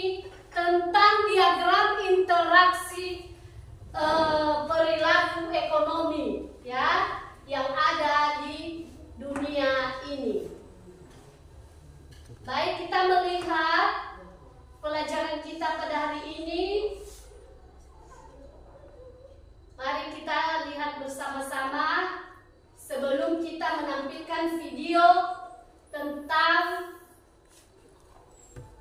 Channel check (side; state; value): both; identical; correlation 1.00